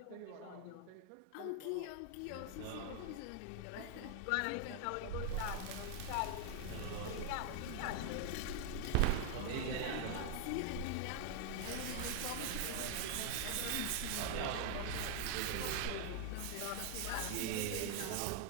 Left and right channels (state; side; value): different; both; correlation 0.00